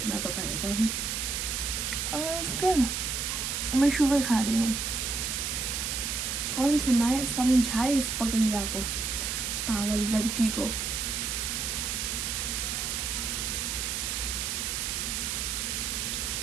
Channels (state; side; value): noise; right; hiss, 1 dB below the sound